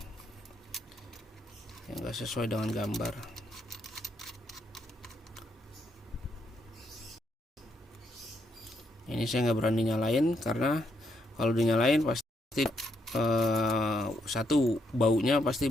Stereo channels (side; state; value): both; normal; correlation 0.76